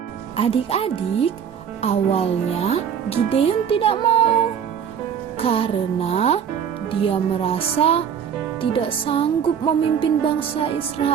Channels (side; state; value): left; quieter; 8.1 dB